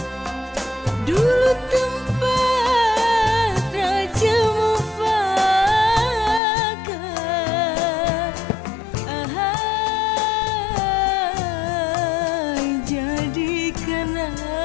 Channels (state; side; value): drops out; right; at 6.4 s